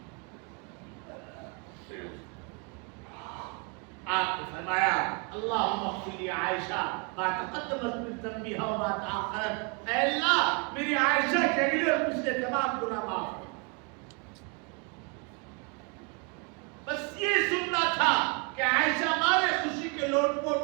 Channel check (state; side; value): quieter; left; 33.9 dB